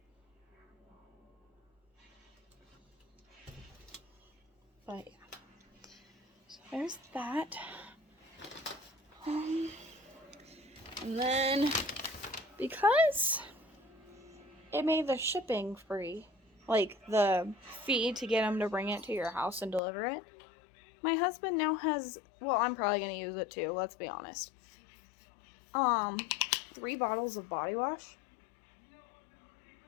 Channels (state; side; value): drops out; right; at 19.8 s